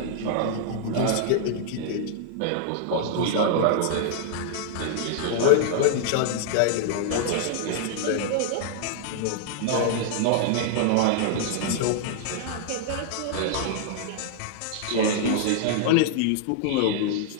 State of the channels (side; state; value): both; different; correlation -0.01